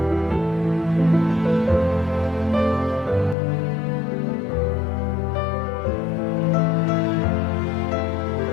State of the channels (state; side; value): drops out; right; at 3.4 s